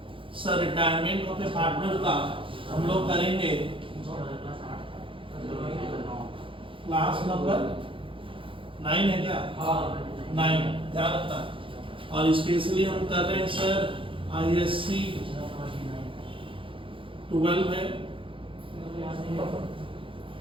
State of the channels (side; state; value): left; late; 0.25 ms